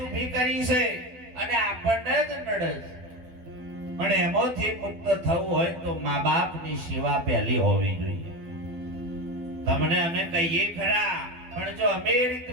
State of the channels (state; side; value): late; left; 12 ms